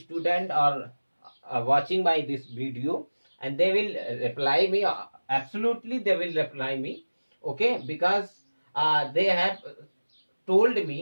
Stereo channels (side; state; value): both; inverted; correlation -1.00